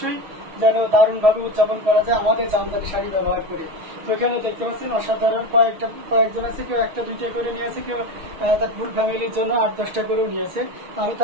যেন দারুণ ভাবে উদযাপন করা যায় আমাদের জামদানি শাড়ি ব্যবহার করে। তো এখানে দেখতে পাচ্ছেন অসাধারণ কয়েকজন আছে, কেউ 1টা 2টা করে নিয়েছে, কেউ তার ফুল ফ্যামিলির জন্য 8-10টা করেও নিয়েছে। আমি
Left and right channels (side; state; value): left; late; 6.4 ms